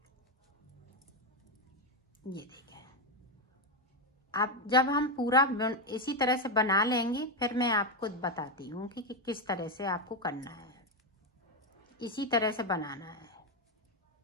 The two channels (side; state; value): both; normal; correlation 0.07